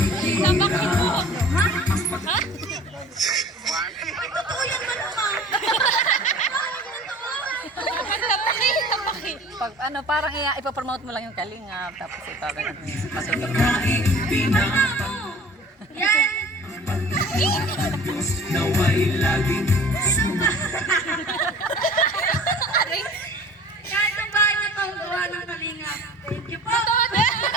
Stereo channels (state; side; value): normal; both; correlation 0.45